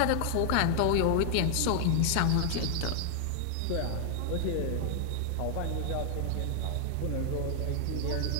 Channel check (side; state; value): both; different; correlation 0.00